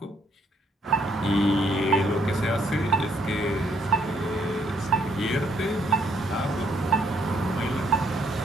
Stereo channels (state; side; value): normal; both; correlation 0.69